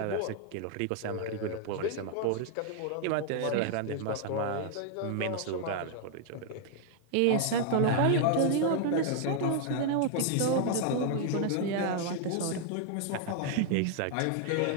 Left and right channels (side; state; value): both; different; correlation 0.00